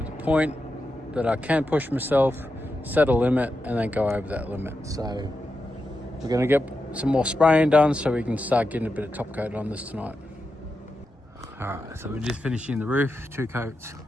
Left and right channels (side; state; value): both; normal; correlation 0.88